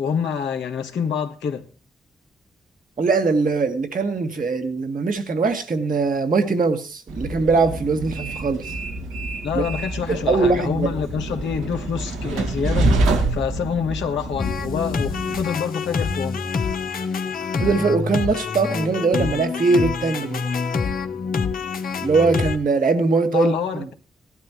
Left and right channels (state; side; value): normal; both; correlation 0.65